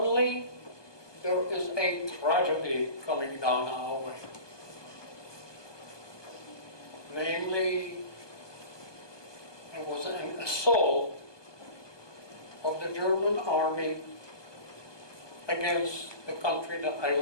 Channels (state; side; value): late; right; 1.2 ms